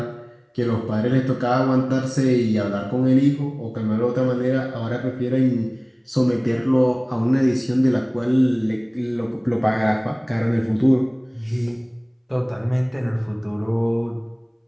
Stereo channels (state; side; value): identical; both; correlation 1.00